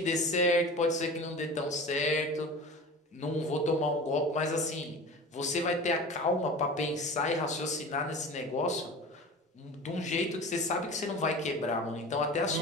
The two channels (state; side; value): normal; both; correlation 0.36